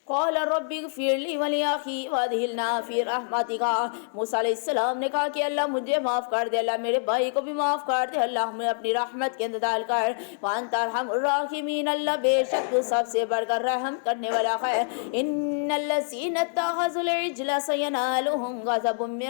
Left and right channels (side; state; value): right; silent; digital silence